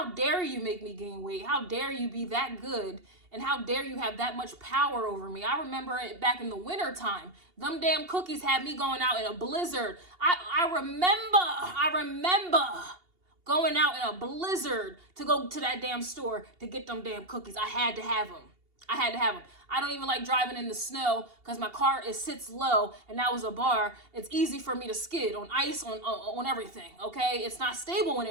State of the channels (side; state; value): left; late; 2.8 ms